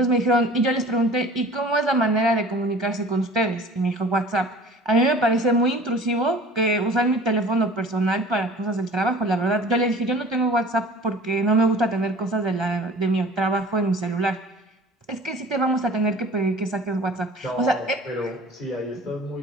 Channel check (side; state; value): both; normal; correlation 0.45